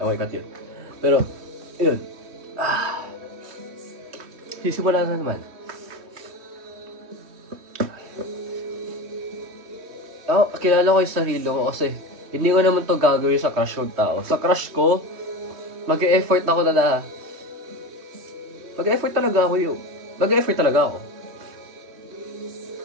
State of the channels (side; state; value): left; late; 3.2 ms